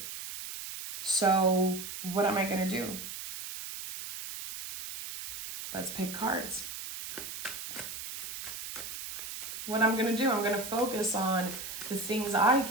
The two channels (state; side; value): noise; right; hiss, 8 dB below the sound